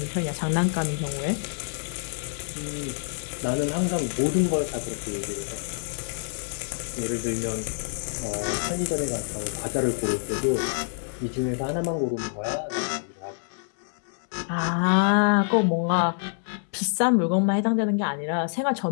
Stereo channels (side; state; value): right; silent; digital silence